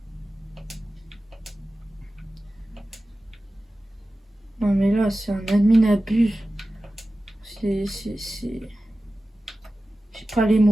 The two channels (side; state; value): both; normal; correlation 0.95